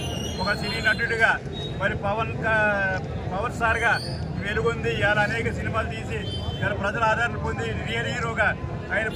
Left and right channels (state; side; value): identical; both; correlation 1.00